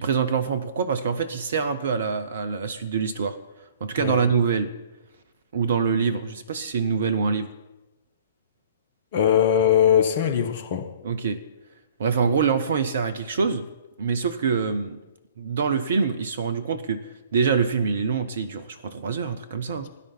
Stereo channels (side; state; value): both; inverted; correlation -0.52